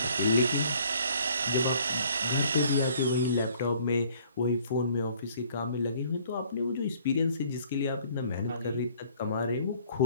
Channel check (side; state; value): both; inverted; correlation -0.59